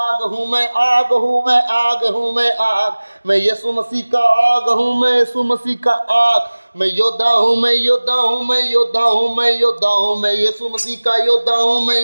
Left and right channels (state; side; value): inverted; both; correlation -1.00